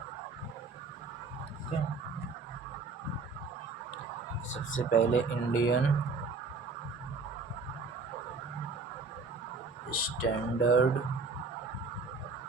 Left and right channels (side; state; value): left; quieter; 4.1 dB